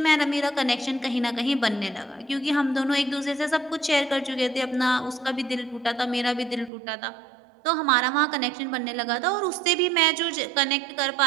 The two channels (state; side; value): drops out; left; at 6.7 s